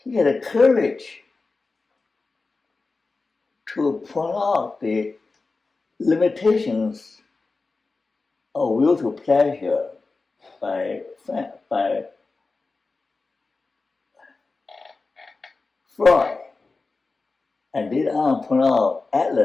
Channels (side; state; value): right; quieter; 3.8 dB